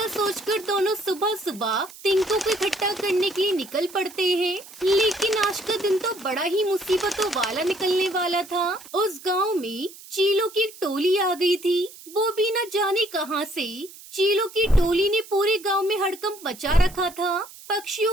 सोचकर दोनों सुबह सुबह तिनकों को इकट्ठा करने के लिए निकल पड़ते हैं। लेकिन आज का दिन तो बड़ा ही मुसीबतों वाला निकलने वाला था। उस गांव में चीलों की एक टोली आ गई थी। वो भी न जाने कहां से। चीलों की टोली ने पूरे गांव में हड़कंप मचा रखा था।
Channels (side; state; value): right; noise; hiss, 18 dB below the sound